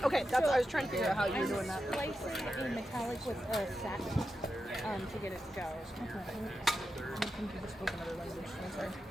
okay, that's I was trying to figure out how you were doing that. Slicing in metallic with a satin to get it to go.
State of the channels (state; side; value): normal; both; correlation 0.89